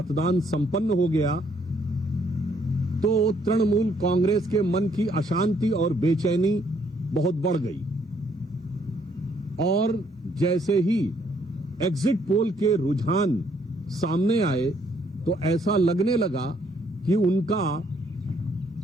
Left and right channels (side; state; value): both; normal; correlation 0.68